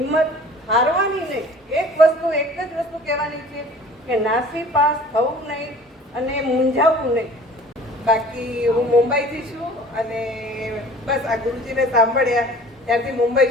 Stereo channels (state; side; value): normal; both; correlation 0.47